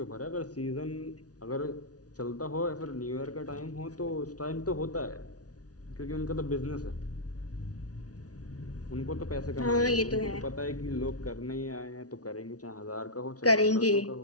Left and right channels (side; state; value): right; late; 0.68 ms